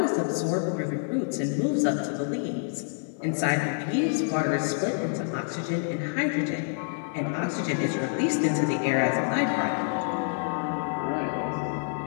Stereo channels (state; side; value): silent; right; 57 dB below the other